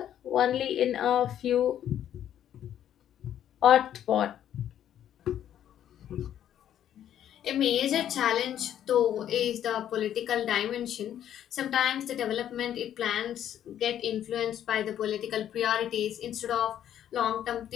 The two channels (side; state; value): right; quieter; 10.6 dB